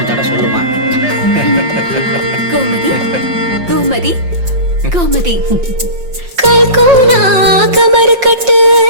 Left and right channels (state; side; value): late; left; 5.7 ms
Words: தடவை சொல்லுமா. கோமதி கோமதி கோமதி கல்கோனா கமர் கட்டு